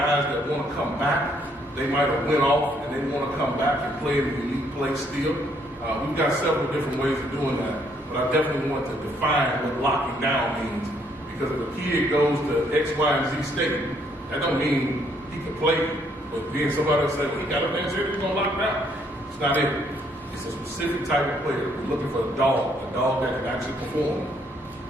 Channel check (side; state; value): right; noise; hum, 28 dB below the sound